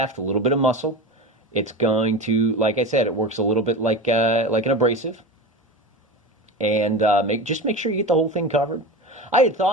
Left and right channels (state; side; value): normal; both; correlation 0.27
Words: a little bit of muscle. It's going to, like I said, it works a little bit like an abrasive. And just make sure you get the whole thing covered. I had